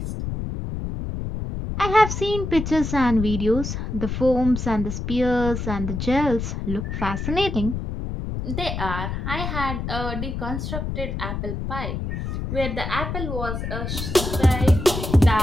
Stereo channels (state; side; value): noise; left; rumble, 4 dB below the sound